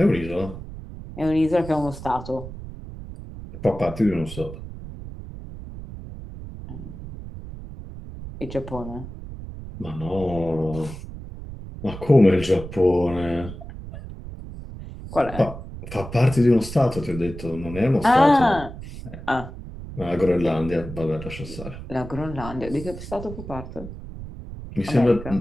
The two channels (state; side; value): noise; right; rumble, 12 dB below the sound